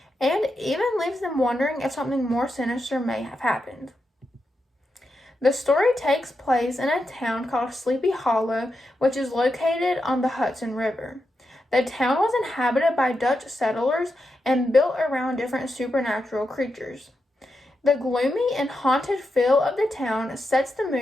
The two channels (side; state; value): both; normal; correlation 0.87